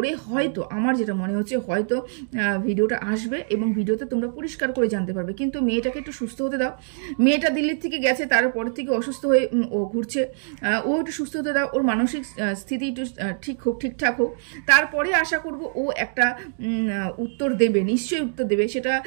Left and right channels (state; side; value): silent; left; digital silence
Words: হয়তো, আমার যেটা মনে হচ্ছে, হয়তো ভিডিওটা আসবে এবং ভিডিওতে তোমরা পরিষ্কার করে জানতে পারবে। কিন্তু মেয়েটাকে একটু সুস্থ হতে দাও। মেয়েটা দিল্লির থেকে গেছে, তারপর থেকে অসুস্থ হয়ে ও ঘুরছে, ও একটু সুস্থ হতে দাও, ওর মানসিক স্থিতি একটু ঠিকঠাক হোক, তারপরে আশা করব ও একটা উত্তর দেবে, নিশ্চয়ই উত্তর দেবে। সেটা